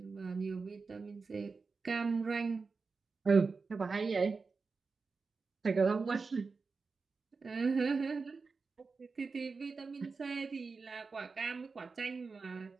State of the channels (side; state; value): left; quieter; 4.5 dB